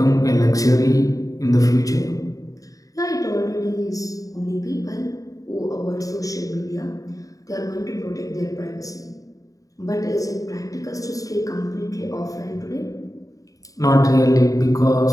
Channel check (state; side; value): late; right; 0.17 ms